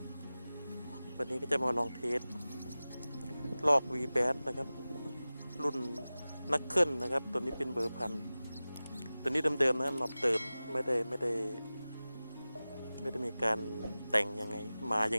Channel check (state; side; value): inverted; both; correlation -0.97